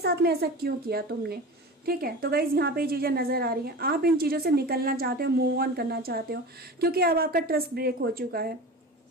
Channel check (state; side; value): normal; both; correlation 0.32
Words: में ऐसा क्यों किया तुमने। ठीक है, तो गाइज यहाँ पे ये चीजें नजर आ रही हैं। आप इन चीजों से निकलना चाहते हो, मूव ऑन करना चाहते हो, क्योंकि अब आपका ट्रस्ट ब्रेक हो चुका है।